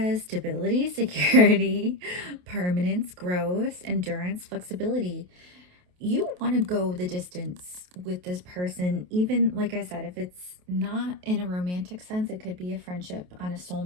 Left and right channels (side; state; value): left; late; 28 ms